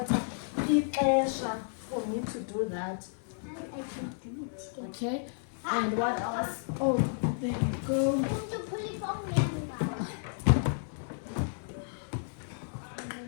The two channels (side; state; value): right; silent; 56 dB below the other